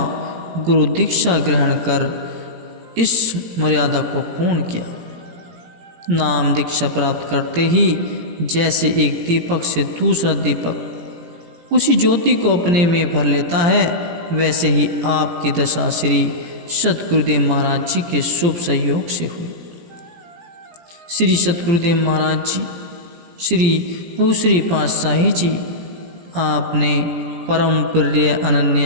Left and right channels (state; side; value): late; left; 17 ms